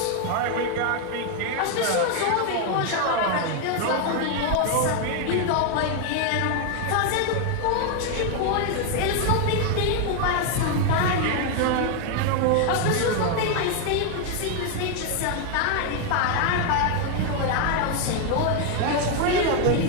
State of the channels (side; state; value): both; different; correlation 0.01